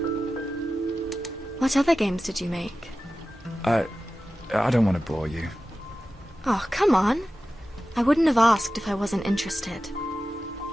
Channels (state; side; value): normal; both; correlation 0.94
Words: What other games did you make? I don't want to bore you. Oh, come on. I wouldn't have asked if I wasn't interested.